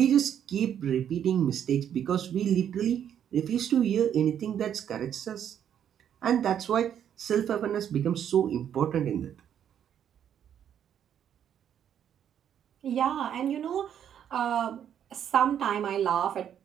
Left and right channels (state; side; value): quieter; left; 9.4 dB